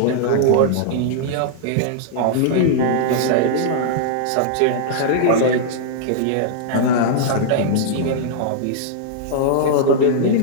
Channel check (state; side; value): different; both; correlation -0.01